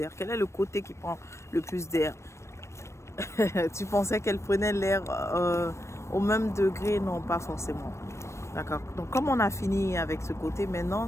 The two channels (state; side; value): late; right; 0.13 ms